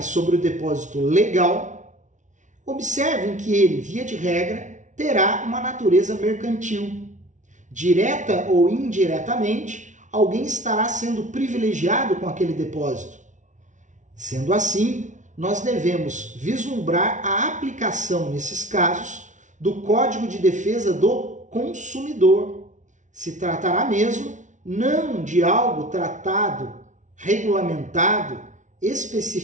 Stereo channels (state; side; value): late; left; 0.36 ms